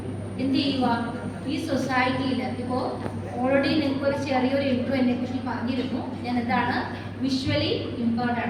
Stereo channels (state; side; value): identical; both; correlation 1.00